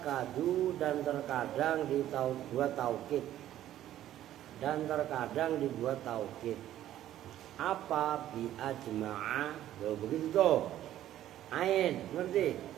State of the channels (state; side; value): quieter; left; 12.6 dB